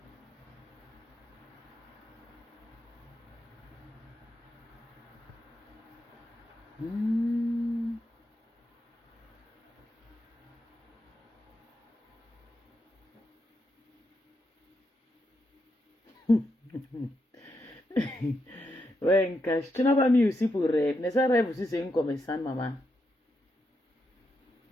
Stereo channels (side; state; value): both; normal; correlation 0.82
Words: Mm. Ouais, Nkash, tu n'as pas mis aussi pour rêve. Mais ça, rêve aussi, c'est une commerçante, maman.